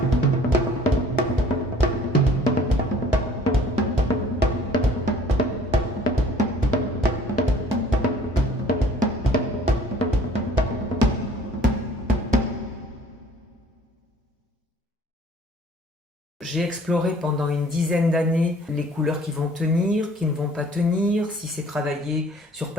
J'ai exploré pendant une dizaine d'années les couleurs qui vont tenir, qui ne vont pas tenir, si c'est travaillé sur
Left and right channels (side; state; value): both; normal; correlation 0.53